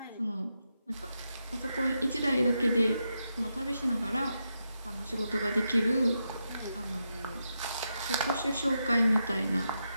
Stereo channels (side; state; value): both; inverted; correlation -0.85